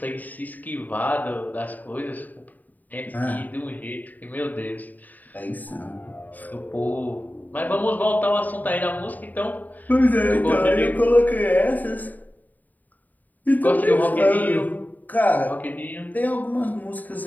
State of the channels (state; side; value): late; right; 0.083 ms